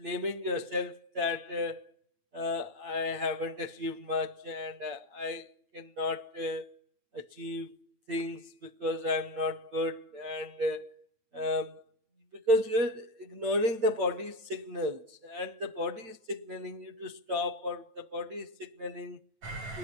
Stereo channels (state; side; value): late; left; 8.9 ms